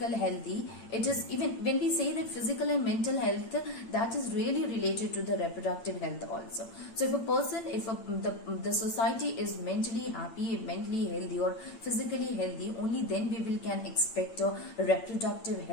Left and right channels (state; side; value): late; right; 8.8 ms